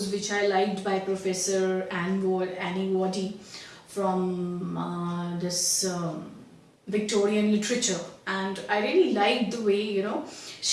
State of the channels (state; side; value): identical; both; correlation 1.00